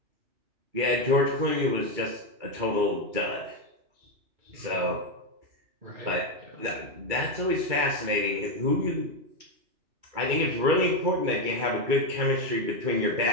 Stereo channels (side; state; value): left; late; 2.3 ms